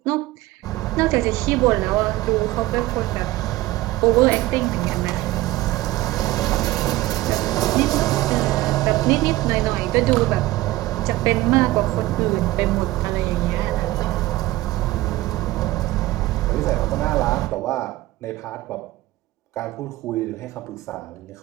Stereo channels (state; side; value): quieter; left; 17.6 dB